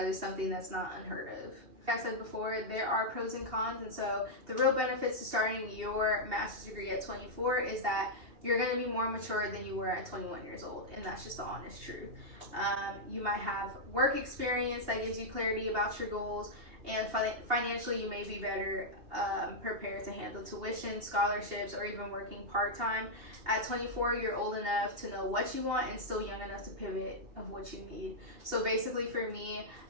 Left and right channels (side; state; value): left; late; 2.8 ms